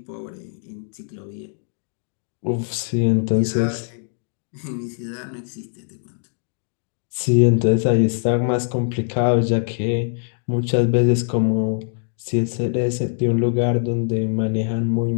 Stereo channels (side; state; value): right; silent; digital silence